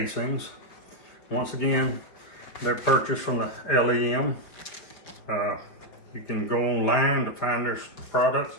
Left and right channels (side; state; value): right; late; 4.9 ms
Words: Once again, they're purchased from the LEM. You can go online to find their products.